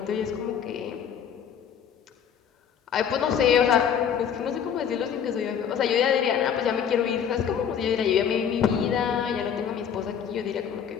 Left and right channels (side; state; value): right; quieter; 8.2 dB